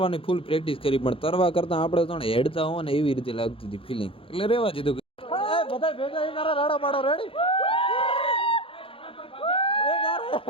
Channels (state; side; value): late; right; 0.26 ms